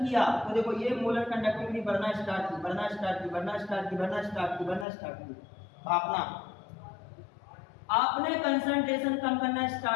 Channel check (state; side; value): drops out; right; at 4.9 s